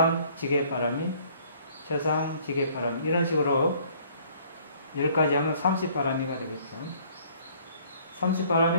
지계바람이 최상 지계바람 이런 식으로 10가지 하면 30바람이가 되겠죠.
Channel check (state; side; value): inverted; both; correlation -0.58